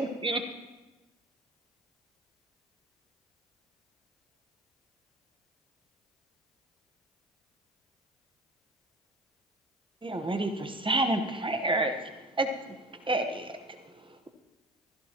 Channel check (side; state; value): both; normal; correlation 0.38